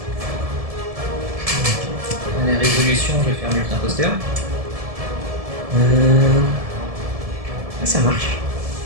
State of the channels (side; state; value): left; late; 1.7 ms